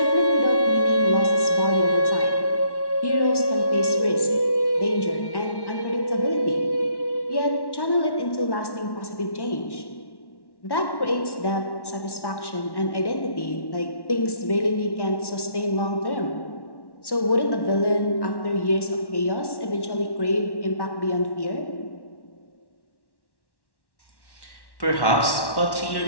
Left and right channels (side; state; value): right; late; 1.1 ms